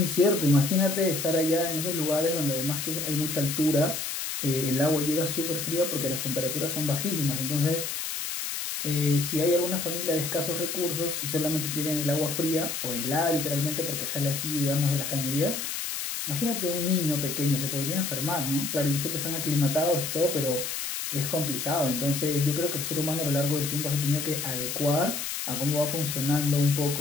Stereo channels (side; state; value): left; noise; hiss, 4 dB below the sound